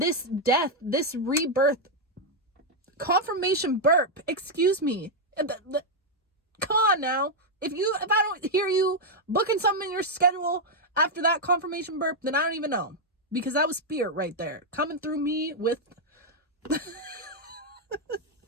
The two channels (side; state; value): both; normal; correlation -0.01